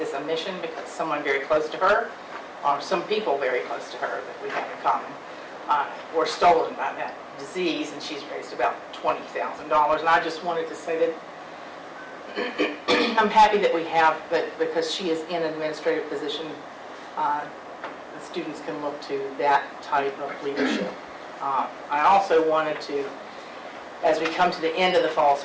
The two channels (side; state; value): both; identical; correlation 1.00